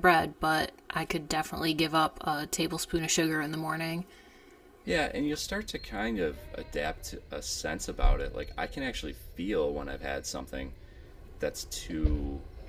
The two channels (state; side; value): identical; both; correlation 1.00